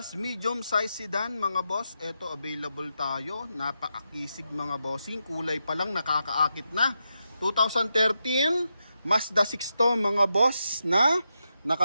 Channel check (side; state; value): both; inverted; correlation -0.86